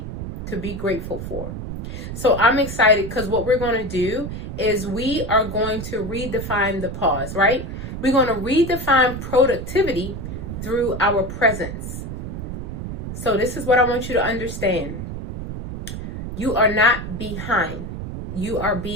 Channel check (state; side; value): noise; right; rumble, 7 dB below the sound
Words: to be grateful for. So I'm excited because what we're going to do is we are going to redefine the pause, right? We're going to redefine productivity through our presence. So this is what I want you to understand. You are not behind. You are